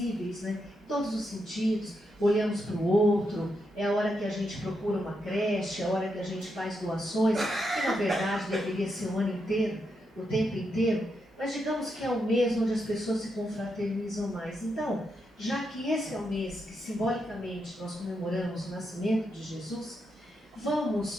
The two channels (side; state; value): both; normal; correlation 0.83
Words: né? Em todos os sentidos, olhamos para o outro, é a hora que a gente procura uma creche, é a hora que a gente faz doações, que na verdade deveria ser o ano inteiro, o tempo inteiro, mas digamos que é o mês onde as pessoas se confraternizam mais. Então, já que esse é o mês que simbolicamente nós comemoramos o nascimento de Jesus,